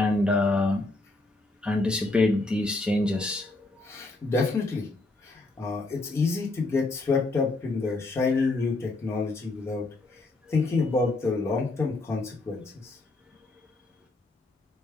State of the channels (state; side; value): quieter; right; 3.0 dB